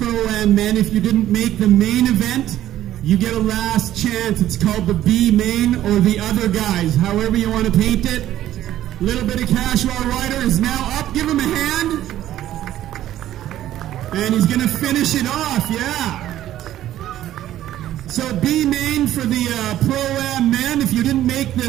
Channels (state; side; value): quieter; left; 12.9 dB